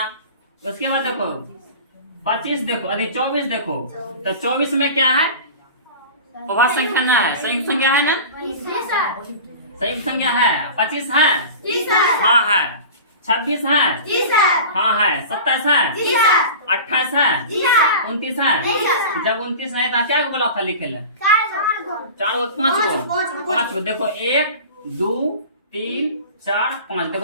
उसके बाद देखो 25 देखो, अरे 24 देखो, तो 24 में क्या है, अभाज्य संख्या ना है, संयुक्त संख्या है ना, संयुक्त संख्या है। 25 है, हाँ है। 26 है, हाँ है। 27 है, 28 है, 29 है। जब 29 नहीं था क्या बोला था लिखे ले, 4 5 को देखो, 1 2 3 4 5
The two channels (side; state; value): both; inverted; correlation -0.36